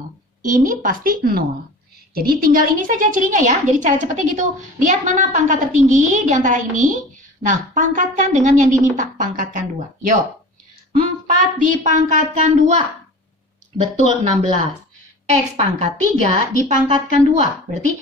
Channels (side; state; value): both; normal; correlation 0.38